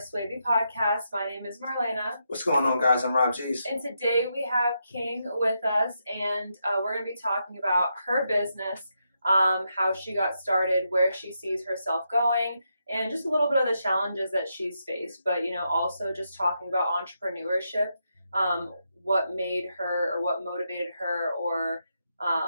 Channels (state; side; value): inverted; both; correlation -0.83